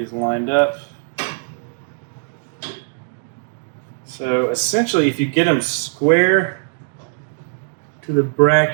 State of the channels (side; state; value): left; silent; digital silence